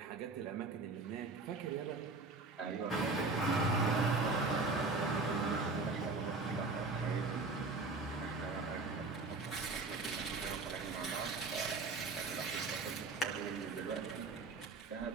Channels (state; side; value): quieter; left; 3.7 dB